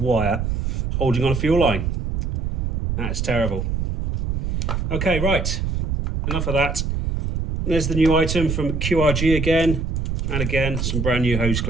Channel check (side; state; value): right; noise; rumble, 1 dB below the sound